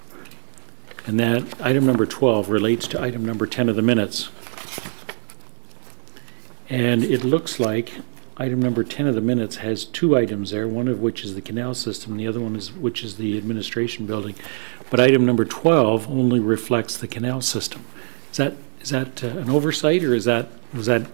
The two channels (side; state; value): left; silent; 55 dB below the other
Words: And that item number 12 relates to item number 10 of the minutes. And it looks like item number 10 of the minutes has two items there, one of which is the canal system, and the other one is which is the administration building. But item number 12 only reflects the canal system. Is that an oversight, or was that